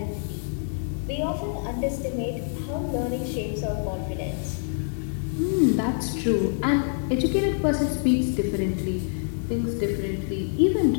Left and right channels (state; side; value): silent; right; digital silence